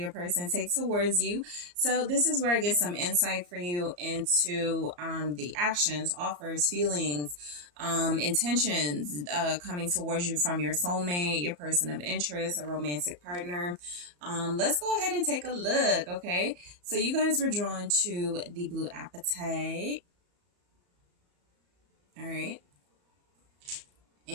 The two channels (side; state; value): left; late; 34 ms